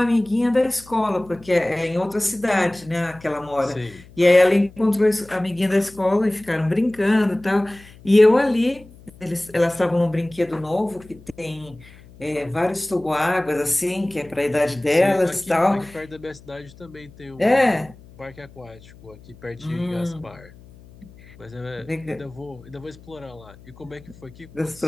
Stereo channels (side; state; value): left; noise; hum, 22 dB below the sound